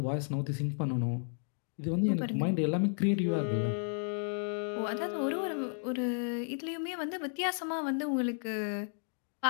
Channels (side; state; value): right; silent; 56 dB below the other